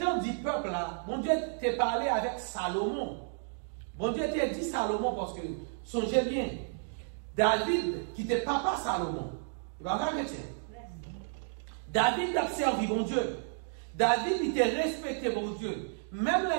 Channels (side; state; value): left; silent; digital silence